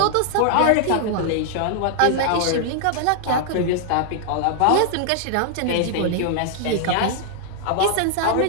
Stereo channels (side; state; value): both; different; correlation 0.00